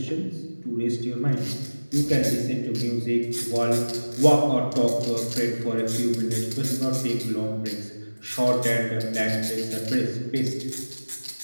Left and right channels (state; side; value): inverted; both; correlation -1.00